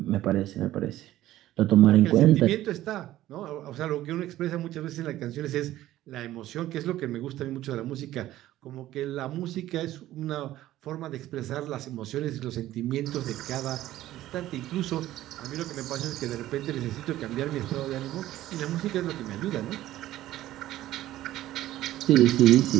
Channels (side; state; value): left; quieter; 14.5 dB